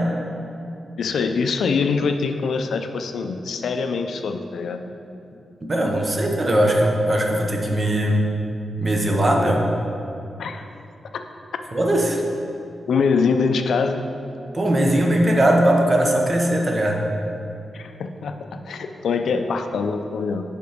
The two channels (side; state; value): both; normal; correlation 0.85